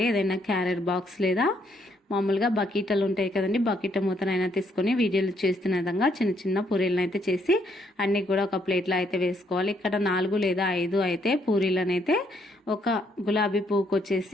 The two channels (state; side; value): normal; both; correlation 0.71